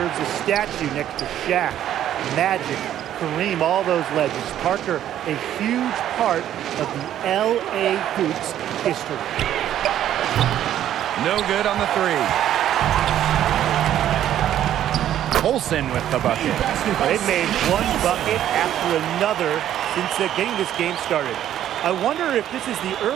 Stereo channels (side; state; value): left; quieter; 11.4 dB